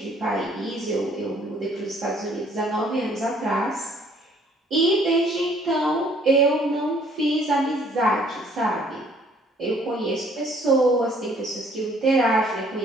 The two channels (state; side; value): normal; both; correlation 0.60